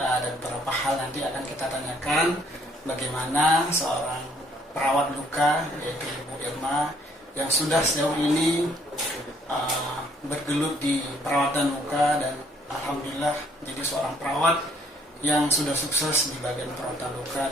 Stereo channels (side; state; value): both; normal; correlation 0.65